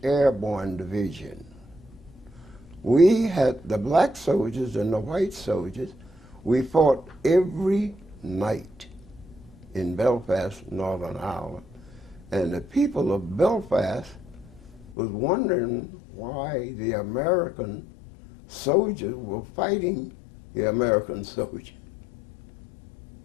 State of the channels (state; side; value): drops out; right; at 15.0 s